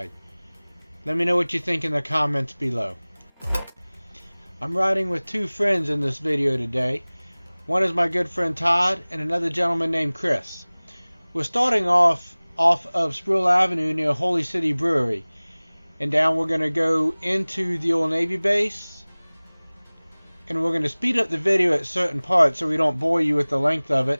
Let me know what you think in the comments below. I'm riding with two friends in this video today. One is my good friend Todd and another gentleman named Chris. We're starting off of Sproul Avenue near Holy City Brewery, and down we're going to go into the old Navy base, and we're going to speed up the video at certain parts so we don't bore you with the length of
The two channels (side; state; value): both; inverted; correlation -1.00